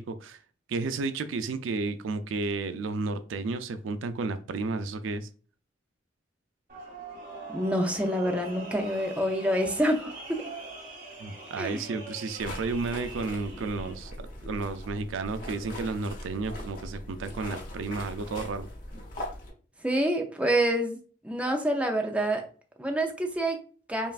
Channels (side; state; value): both; normal; correlation 0.61